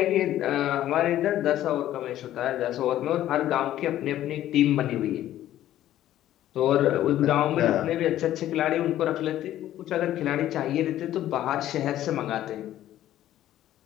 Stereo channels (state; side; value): quieter; right; 12.9 dB